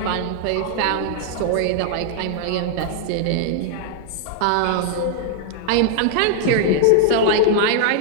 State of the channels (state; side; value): different; both; correlation -0.01